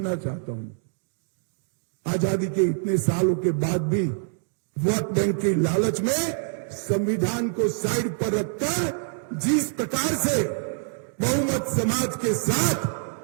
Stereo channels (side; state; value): left; silent; digital silence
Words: चाहता हूं, आजादी के इतने सालों के बाद भी वोट बैंक की लालच में संविधान को साइड पर रखकर जिस प्रकार से बहुमत समाज के